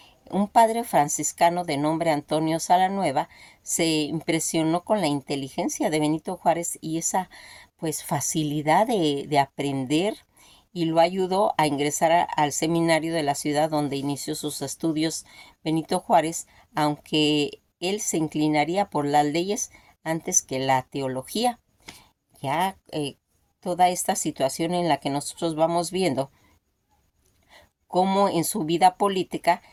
Un padre franciscano de nombre Antonio Salanueva se impresionó con la inteligencia de Benito Juárez y esa pues facilidad de aprender y lo ayudó a ingresar al seminario de la ciudad donde inició sus estudios Benito Juárez, aunque él se inclinaría por las leyes antes que la teología. Ya toda esta situación en la que nosotros vamos viendo cómo en su vida política,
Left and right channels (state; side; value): identical; both; correlation 1.00